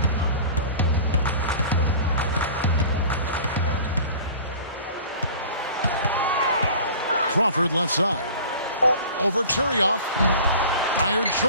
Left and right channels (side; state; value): both; inverted; correlation -0.42